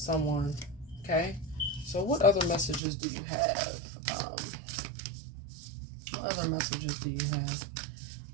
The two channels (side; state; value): left; drops out; at 2.8 s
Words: Okay, so what other messages do you have? What other messages do you have?